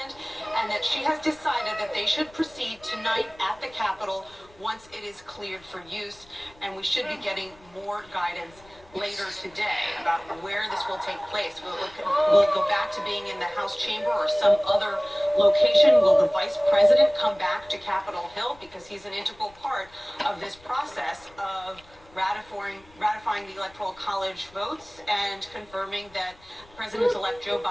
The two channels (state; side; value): noise; left; rumble, 26 dB below the sound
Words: and that she has decided that they should proceed tonight at the Capitol once it is cleared for use, and we should be getting more guidance later today about where this will take place. Will it go back to being in the House chamber or some other location? Will the Vice President come back to Capitol Hill, because he's an integral part of this process of ratifying the Electoral College votes and confirming that President-elect Joe